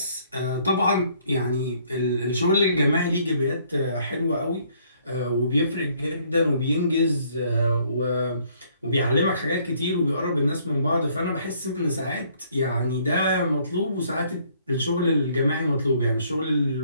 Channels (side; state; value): both; inverted; correlation -0.64